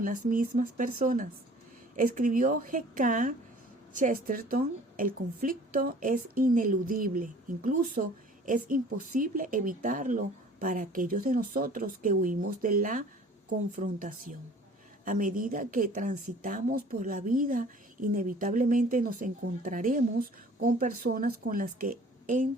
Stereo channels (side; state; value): both; normal; correlation 0.50